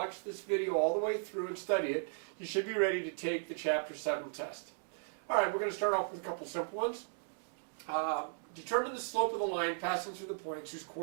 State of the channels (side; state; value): left; silent; digital silence